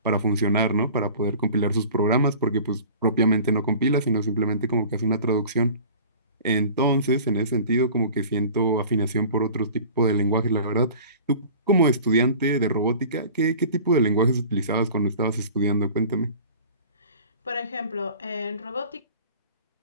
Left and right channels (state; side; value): inverted; both; correlation -0.43